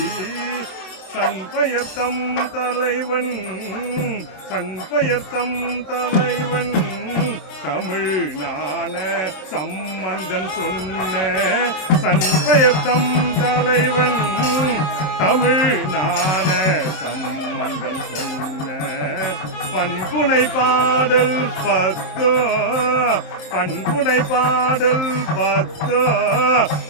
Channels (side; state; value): right; late; 27 ms